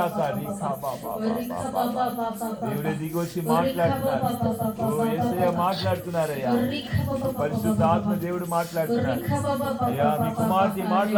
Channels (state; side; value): identical; both; correlation 1.00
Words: దేవుడే దిగి వచ్చి మాట్లాడుతున్నారు. యేసయ్య మాట్లాడుతున్నారయ్యా. పరిశుద్ధ ఆత్మ దేవుడు మాట్లాడుతున్నారు. అయ్యా మీ కుమార్తె